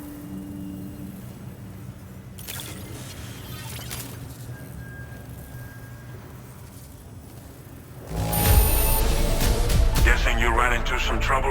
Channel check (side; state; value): both; identical; correlation 1.00